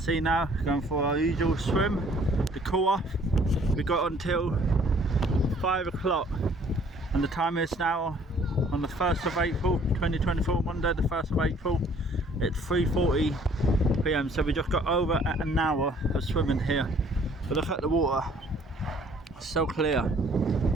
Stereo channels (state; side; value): normal; both; correlation 0.58